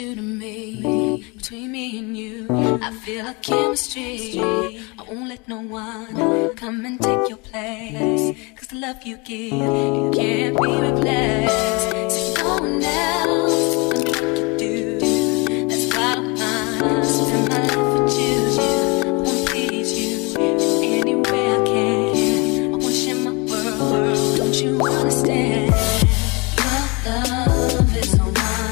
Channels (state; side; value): quieter; right; 28.5 dB